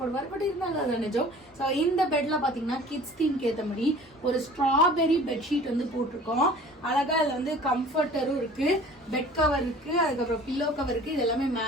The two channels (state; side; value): normal; both; correlation 0.46